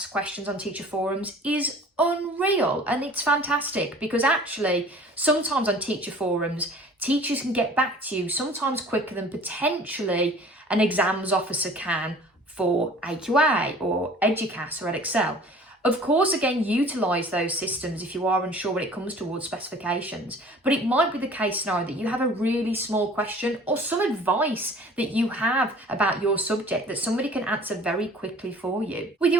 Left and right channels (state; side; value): normal; both; correlation 0.47